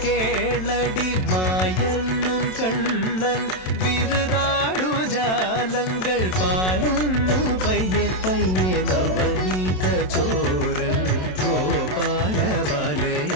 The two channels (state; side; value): late; right; 27 ms